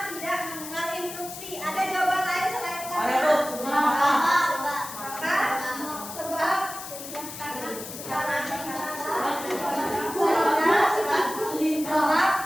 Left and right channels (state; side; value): noise; left; hiss, 11 dB below the sound